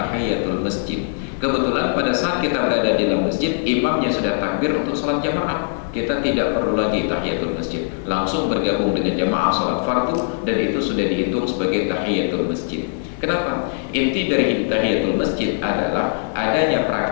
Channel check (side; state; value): right; silent; digital silence